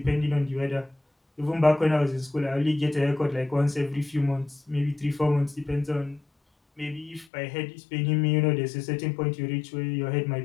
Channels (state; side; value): drops out; right; at 7.2 s